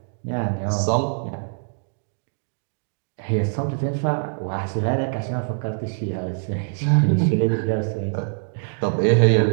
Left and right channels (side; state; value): left; silent; digital silence